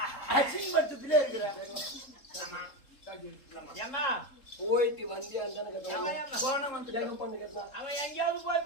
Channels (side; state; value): right; late; 3.7 ms